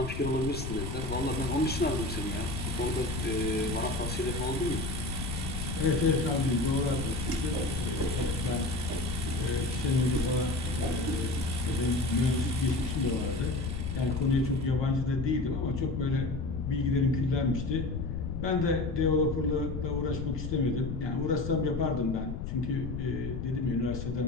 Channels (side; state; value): left; noise; rumble, 5 dB below the sound